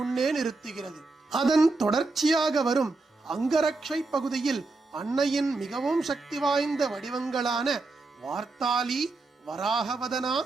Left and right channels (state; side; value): quieter; left; 3.5 dB